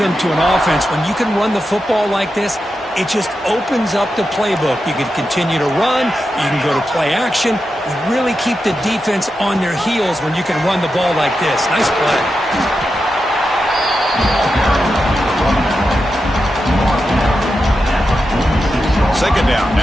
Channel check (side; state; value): both; normal; correlation 0.89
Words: to an offense. When you can run the football like this, it just opens up the playbook. You can continue to run. You can go to play action. You really keep the defense on their heels when you can run the ball like this. Nice play. Second down